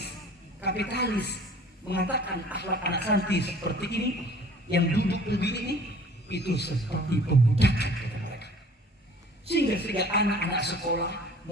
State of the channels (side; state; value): both; normal; correlation 0.50